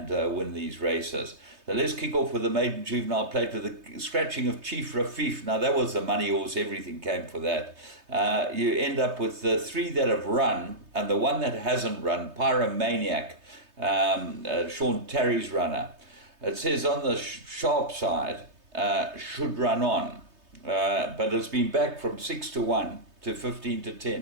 win these races. So let's kick off with the maiden juvenile plate with the scratching of Chief Rafif. Now that was the money horse, everything came for that. You end up with the 3 that have run and the one that hasn't run, Pyromaniac, Sean Terry's runner. It says on the sharp side, should run on, but it's been back from 6-1 to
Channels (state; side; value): late; left; 3.2 ms